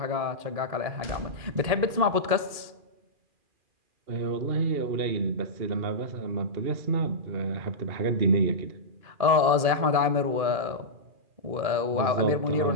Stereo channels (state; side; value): late; left; 2.4 ms